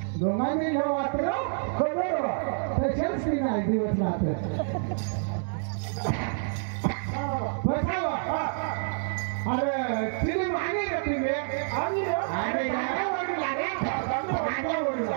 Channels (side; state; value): left; silent; digital silence